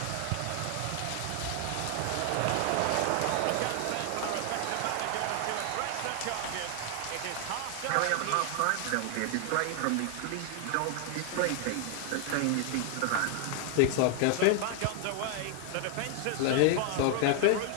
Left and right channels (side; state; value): both; different; correlation 0.00